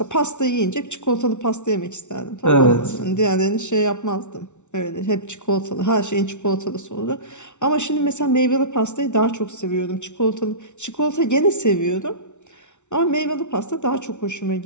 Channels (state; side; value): late; right; 0.83 ms